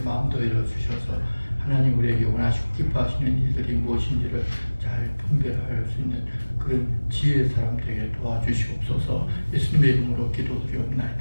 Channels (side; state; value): both; inverted; correlation -1.00